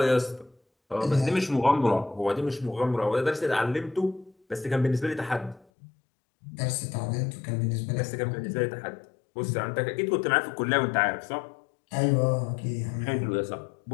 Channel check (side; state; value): right; drops out; at 5.7 s